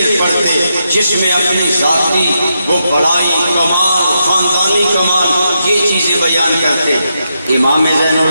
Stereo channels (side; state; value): both; inverted; correlation -0.84